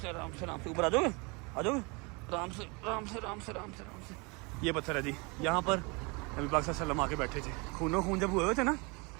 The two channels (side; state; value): left; quieter; 29.2 dB